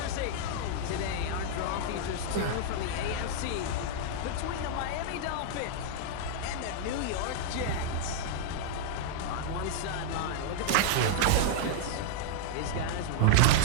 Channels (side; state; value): both; different; correlation -0.01